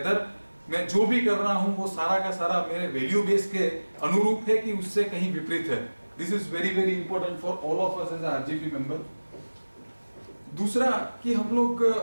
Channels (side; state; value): both; inverted; correlation -1.00